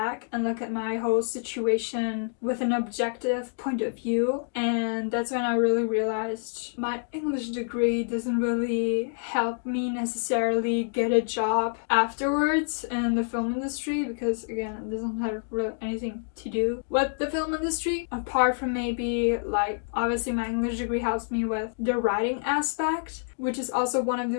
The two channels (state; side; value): silent; right; digital silence